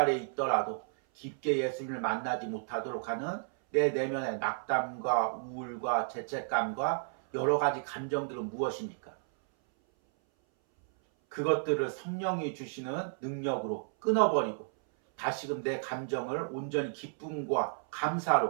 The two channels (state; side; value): silent; left; 56 dB below the other